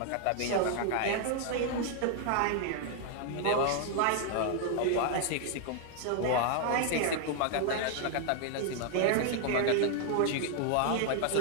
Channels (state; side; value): different; both; correlation 0.00